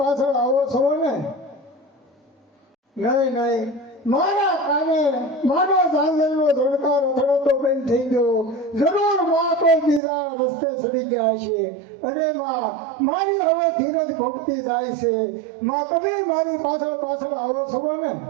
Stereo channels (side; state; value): left; drops out; at 10.0 s